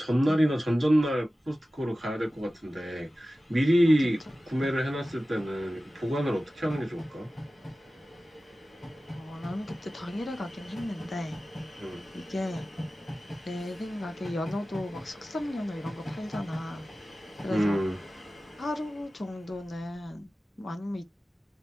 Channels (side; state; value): both; normal; correlation 0.96